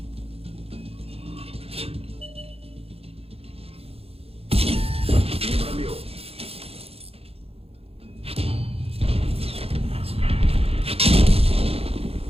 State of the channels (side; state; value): left; late; 0.29 ms